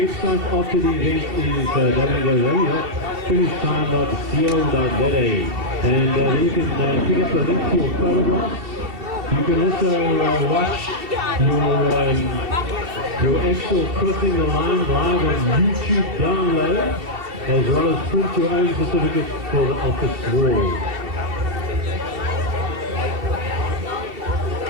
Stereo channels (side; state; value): left; late; 2.7 ms